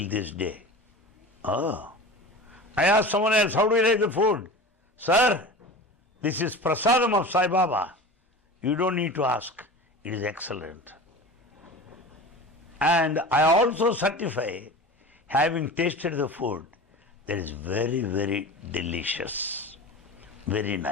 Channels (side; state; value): both; normal; correlation 0.34